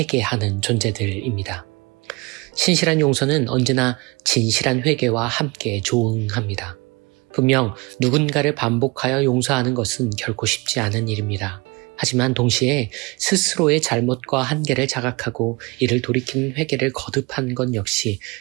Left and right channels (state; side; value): quieter; left; 26.6 dB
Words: 존재들입니다. 신실한 용서는 언제나 진실한 회개와 함께 조응합니다. 분명 누군가를 반복하여 용서하는 것은 결코 쉽지 않은 일입니다. 하지만 동시에 스스로의 잘못과 한계를 자각하고 이를 돌이키는 회개를 거듭하는 것 역시